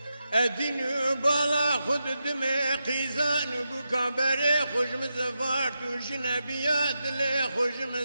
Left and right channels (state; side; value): inverted; both; correlation -0.88